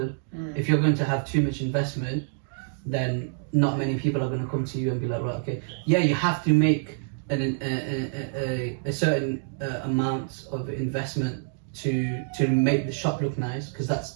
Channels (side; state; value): left; silent; digital silence